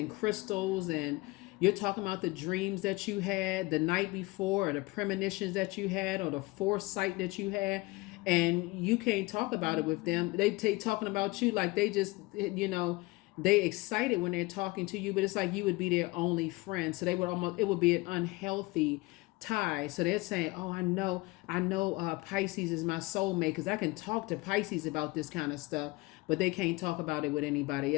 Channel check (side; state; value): right; quieter; 22.7 dB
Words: crystals, and you're talking about the dreams that you had the night before, or the premonitions that you had, or the foresight that you had, and you can't talk about it with them. They take talking about you like they just, they excited when they're talking to you, but it's like you would be their only friend. So they would almost, it would be an unhealthy tie. So they're saying, oh, I know Pisces is my soulmate, because I can talk to Pisces about this kind of stuff, but they can't talk about it with anybody